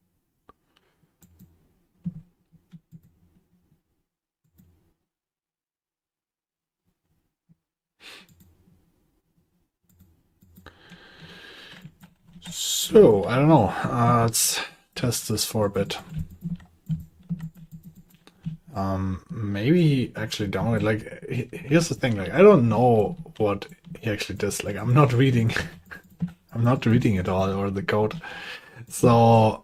So, I don't know. Let's test this for a bit. Maybe actually download, like, here's the thing, like, I don't know what he actually does. Like, I'm not reading, I'm not reading it all or the code. So,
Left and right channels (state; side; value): identical; both; correlation 1.00